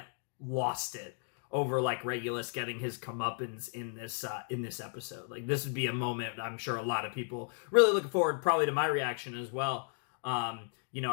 lost it over like Regulus getting his comeuppance in this episode. Like, this would be a moment I'm sure a lot of people really looking forward probably to my reaction as well.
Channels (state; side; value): silent; right; 55 dB below the other